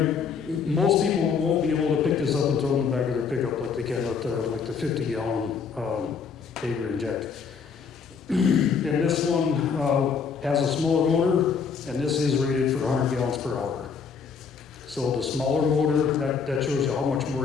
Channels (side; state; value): right; quieter; 5.9 dB